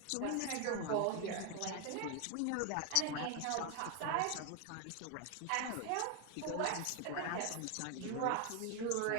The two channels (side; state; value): both; different; correlation 0.01